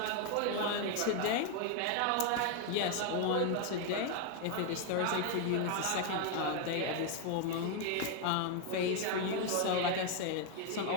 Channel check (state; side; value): different; both; correlation 0.01